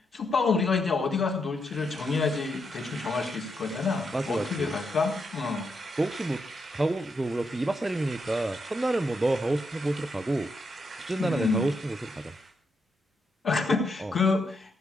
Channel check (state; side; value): normal; both; correlation 0.81